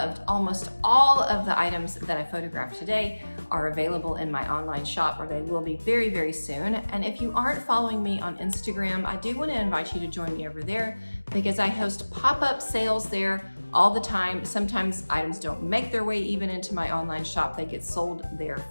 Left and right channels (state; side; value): inverted; both; correlation -1.00